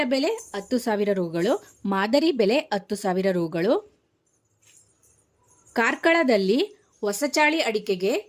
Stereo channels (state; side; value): identical; both; correlation 1.00